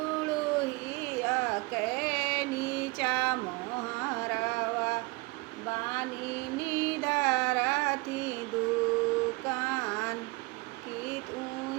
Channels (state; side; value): quieter; left; 25.5 dB